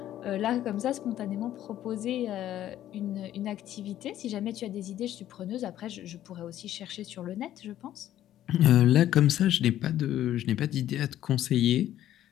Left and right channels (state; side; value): quieter; right; 12.4 dB